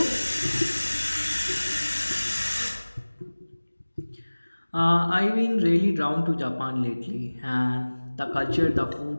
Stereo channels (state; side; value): inverted; both; correlation -1.00